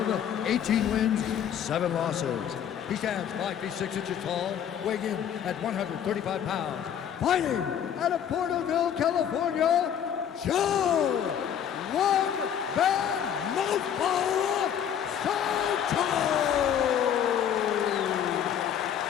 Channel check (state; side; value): quieter; right; 9.1 dB